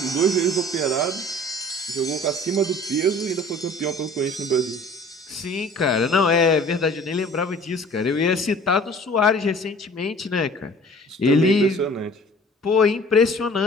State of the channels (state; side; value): normal; both; correlation 0.48